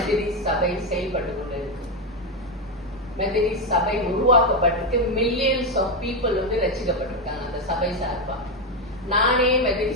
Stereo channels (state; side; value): normal; both; correlation 0.08